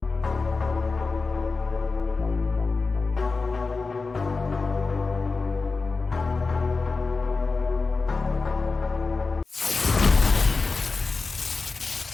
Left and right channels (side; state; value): right; quieter; 4.1 dB